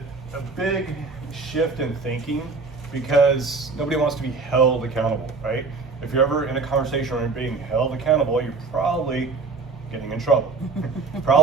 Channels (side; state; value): left; quieter; 4.2 dB